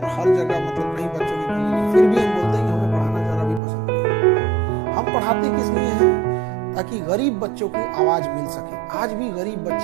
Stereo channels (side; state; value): left; drops out; at 3.6 s